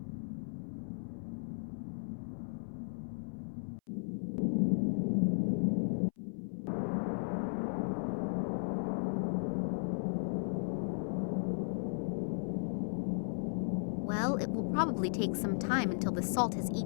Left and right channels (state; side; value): silent; right; 54 dB below the other